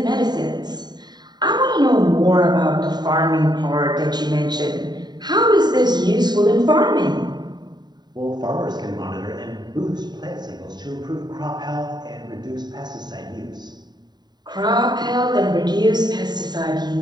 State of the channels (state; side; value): late; left; 0.20 ms